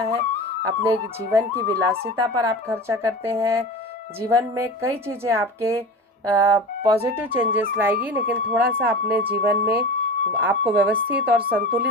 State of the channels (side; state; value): both; normal; correlation 0.31